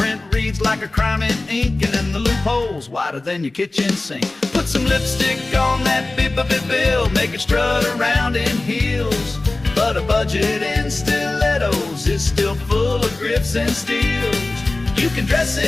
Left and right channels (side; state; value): right; quieter; 3.0 dB